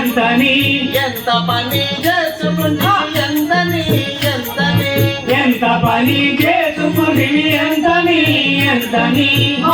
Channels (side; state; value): both; identical; correlation 1.00